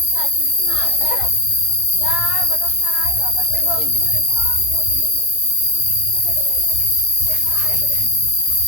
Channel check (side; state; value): right; late; 18 ms